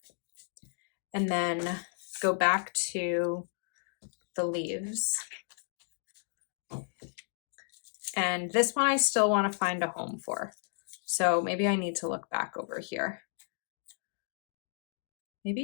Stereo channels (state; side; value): silent; right; 56 dB below the other